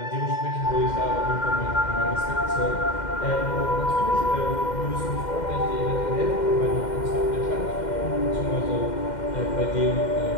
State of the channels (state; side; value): late; right; 2.1 ms